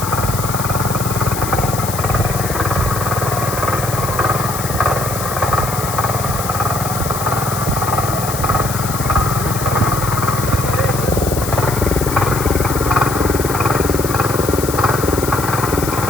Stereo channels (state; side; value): noise; left; hiss, 7 dB below the sound